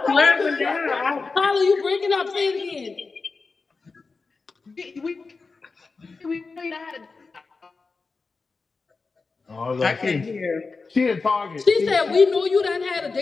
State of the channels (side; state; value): right; quieter; 4.2 dB